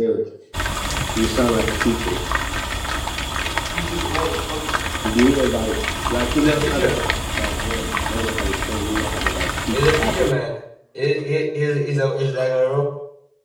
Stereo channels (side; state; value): both; identical; correlation 1.00